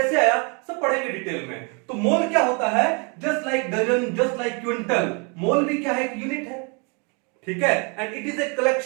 आया, सब पढ़ेंगे डिटेल में। तो मोल क्या होता है? Just like dozen, just like quintal, mole भी क्या है? एक यूनिट है, ठीक है। And it is a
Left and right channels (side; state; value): left; quieter; 33.9 dB